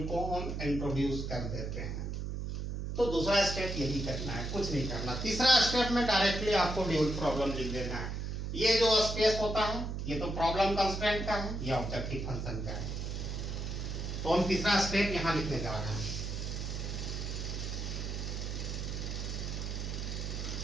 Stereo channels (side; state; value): right; noise; hum, 4 dB below the sound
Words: को हम इंट्रोड्यूस कर देते हैं। तो दूसरा स्टेप यही करना है, कुछ नहीं करना। तीसरा स्टेप में डायरेक्टली आपको ड्यूल प्रॉब्लम लिख देना है। ये जो स्पेस होता है ये तो प्रॉब्लम कंस्ट्रेंट का है, ये ऑब्जेक्टिव फंक्शन का है। तो हम तीसरा स्टेप यहाँ लिखने जा रहे हैं।